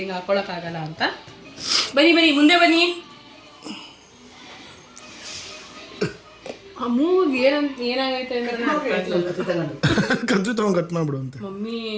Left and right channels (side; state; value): both; identical; correlation 1.00